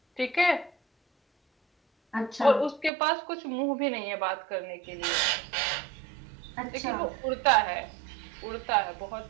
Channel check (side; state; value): left; drops out; at 2.9 s